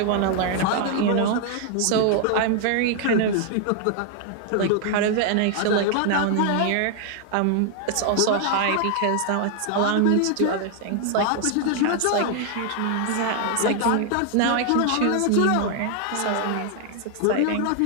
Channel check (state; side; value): different; both; correlation 0.00